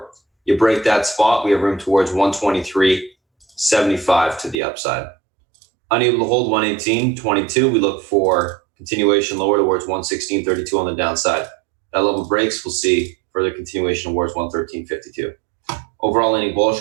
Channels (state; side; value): drops out; left; at 4.5 s